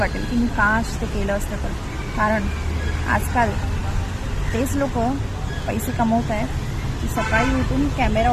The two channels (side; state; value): both; identical; correlation 1.00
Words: की मी काश ते केलं असतं तर. कारण आजकाल तेच लोक पैसे कमवत आहेत की सकाळी उठून कॅमेरा